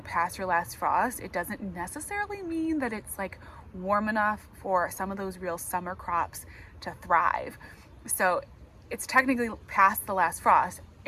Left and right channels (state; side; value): identical; both; correlation 1.00